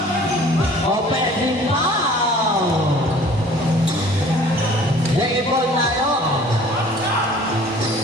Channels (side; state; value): both; normal; correlation 0.50